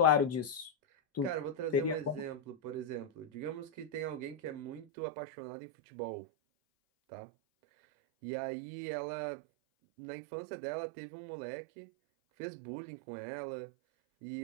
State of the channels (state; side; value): drops out; left; at 4.9 s